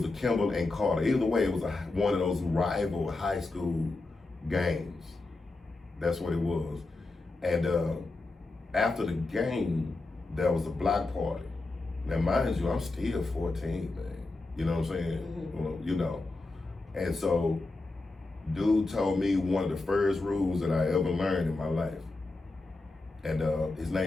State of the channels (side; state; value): right; quieter; 3.2 dB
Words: a Kimball and Carter. Either way, it was one of those rival high school games. That's what it was. And after the game, there was a block party. Now, mind you, I'm still 14, man. You know what I'm saying? Mm-hmm. Well, you know. And so, dude told me one of the first rules that I ever learned in my life. And his